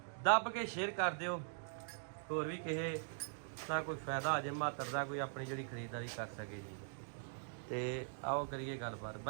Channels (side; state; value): left; silent; digital silence